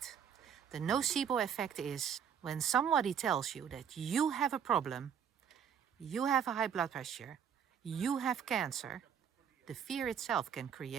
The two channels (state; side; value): quieter; left; 8.1 dB